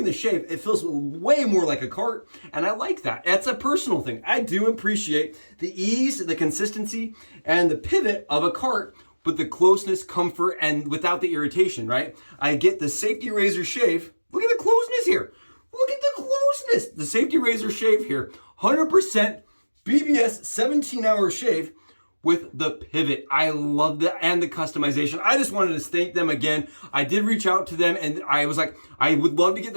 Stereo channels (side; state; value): both; inverted; correlation -1.00